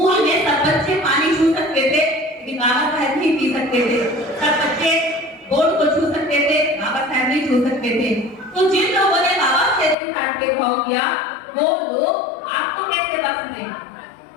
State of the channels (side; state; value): right; drops out; at 10.0 s